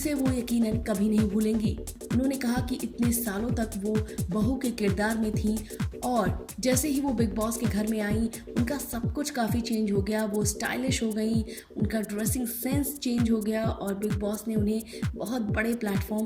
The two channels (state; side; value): identical; both; correlation 1.00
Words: वो यकीनन कभी नहीं भूलेंगी। उन्होंने कहा कि इतने सालों तक वो बहू के किरदार में थी और जैसे ही वो बिग बॉस के घर में आई उनका सब कुछ काफ़ी चेंज हो गया। वो स्टाइलिश हो गई, उनका ड्रेसिंग सेंस चेंज हो गया और बिग बॉस ने उन्हें बहुत बड़े